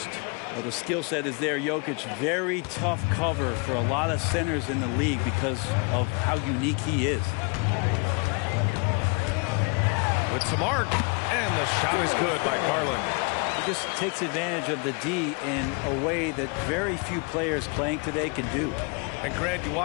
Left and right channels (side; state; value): right; quieter; 32.6 dB